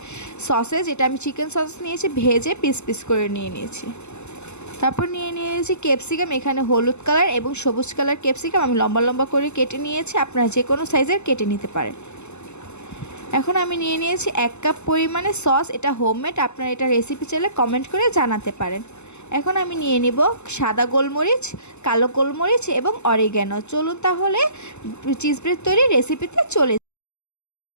সসেজ, এটা আমি চিকেন সস নিয়েছি, ভেজে পিস পিস করে নিয়ে নিয়েছি। তারপর নিয়ে নিয়েছি ক্যাপসিকাম, এখানে হলুদ কালার এবং সবুজ কালার ক্যাপসিকাম আমি লম্বা লম্বা করে কেটে নিয়েছি, আপনারা যে কোনো সাইজের কেটে নিতে পারেন। এখন আমি নিয়ে নিয়েছি 1 কাপ পরিমাণে সস, এটা হোমমেড, আপনারা এটা রেসিপি চাইলে কমেন্ট করে জানাতে পারেন। এখন আমি নিয়ে নিব সাদা গোলমরিচ, কালো গোলমরিচ এবং অরিগ্যানো। চলুন তাহলে চিজ ব্রেড তৈরি রেসিপিতে চলে।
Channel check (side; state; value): right; late; 0.82 ms